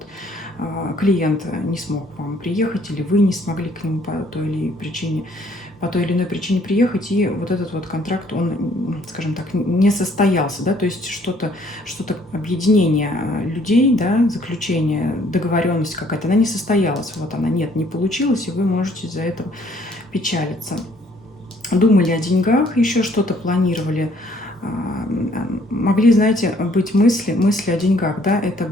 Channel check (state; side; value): normal; both; correlation 0.62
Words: клиент не смог к вам приехать, или вы не смогли к нему по той или иной причине приехать, и вот этот вот контракт, он, скажем так, не состоялся, да, то есть что-то объединение людей, да, заключение, договоренность какая-то, она не состоялась, вот она, нет, не получилось, и вы можете из-за этого печалиться. Думали о деньгах, еще что-то планировали, могли, знаете, быть мысли о деньгах, да, это